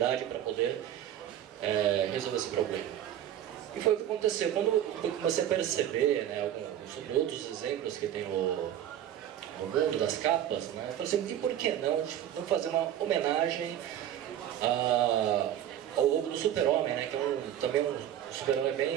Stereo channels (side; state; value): left; quieter; 11.0 dB